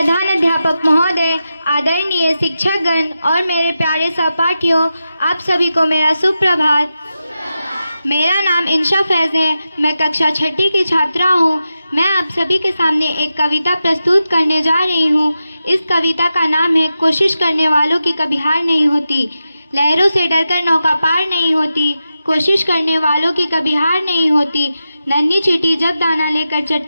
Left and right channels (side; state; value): both; inverted; correlation -0.90